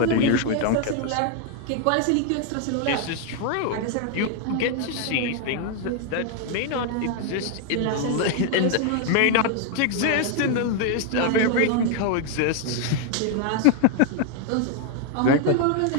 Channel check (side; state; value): both; different; correlation 0.01